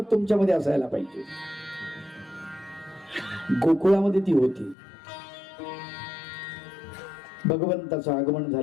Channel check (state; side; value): drops out; right; at 4.8 s